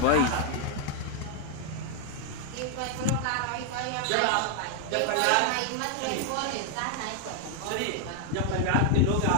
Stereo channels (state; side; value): different; both; correlation 0.00